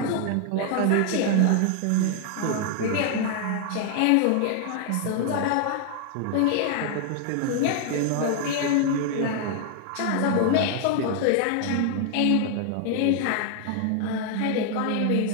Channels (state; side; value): different; both; correlation 0.00